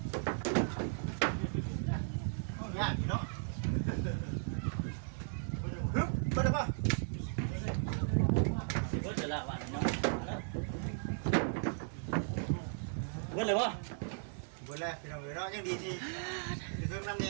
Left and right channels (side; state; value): left; silent; digital silence